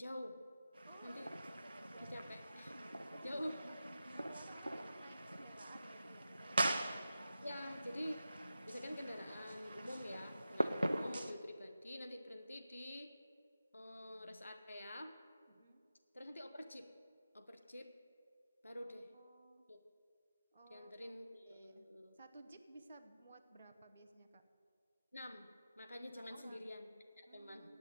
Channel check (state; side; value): inverted; both; correlation -0.92